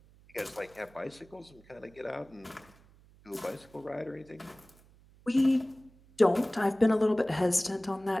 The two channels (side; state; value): right; noise; hum, 27 dB below the sound